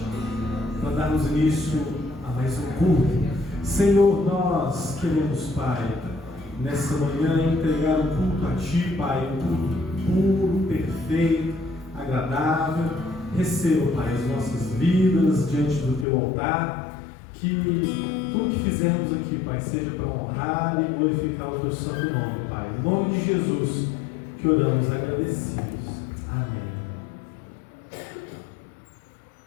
para darmos início a mais um culto. Senhor, nós queremos, Pai, nessa manhã entregar um culto a Ti, Pai, um culto puro, perfeito, agradável. Receba, Pai, as nossas vidas diante do Teu altar. Que tudo que fizermos aqui, Pai, seja para honrar e glorificar o Teu santo nome, Pai. Em nome de Jesus que oramos agradecidos. Amém.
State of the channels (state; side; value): drops out; right; at 16.1 s